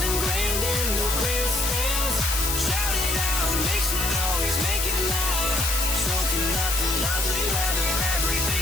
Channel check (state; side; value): noise; left; hiss, 1 dB below the sound